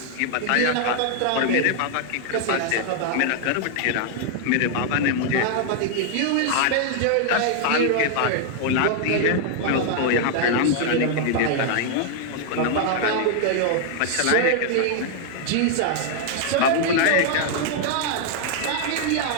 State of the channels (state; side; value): different; both; correlation 0.00